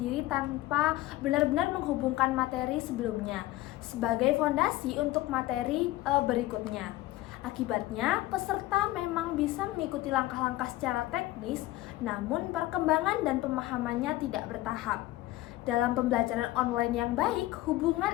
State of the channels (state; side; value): quieter; right; 16.9 dB